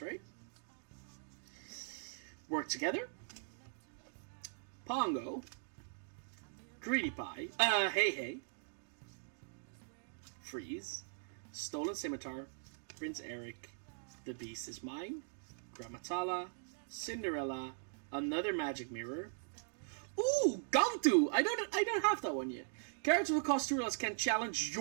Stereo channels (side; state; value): left; silent; digital silence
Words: right? Work together. Pongo. Greedy Pie. Hey. Freeze. Stolen Scimitar. Prince Eric. The Beast is Mine. Gramatala. Cinderella. Another Magic Mirror. Ooh, Gantu! I don't have that one yet. Characters with cost 2 or less can challenge